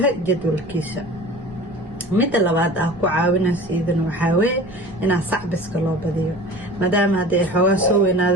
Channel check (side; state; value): right; noise; rumble, 23 dB below the sound